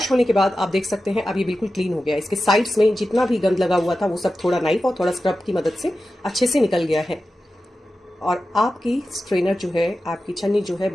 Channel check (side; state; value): both; normal; correlation 0.93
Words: होने के बाद आप देख सकते हैं अब ये बिल्कुल क्लीन हो गया है। इसके साइड्स में जितना भी गंद लगा हुआ था वो सब थोड़ा नाइफ और थोड़ा स्क्रब की मदद से अच्छे से निकल गया है और आपकी स्ट्रेनर जो है, आपकी छन्नी जो है